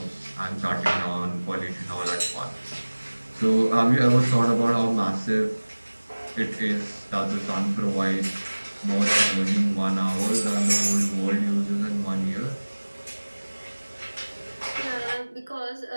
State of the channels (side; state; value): both; inverted; correlation -1.00